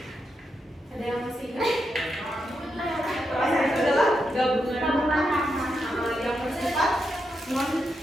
Ada yang masih ingat? Frasa itu adalah gabungan yang bersifat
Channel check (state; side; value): normal; both; correlation 0.84